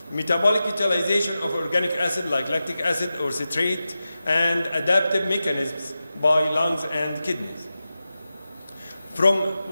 metabolic utilization of organic acid like lactic acid or citrate, and adaptive mechanisms by lungs and kidneys. From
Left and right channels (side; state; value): both; inverted; correlation -0.93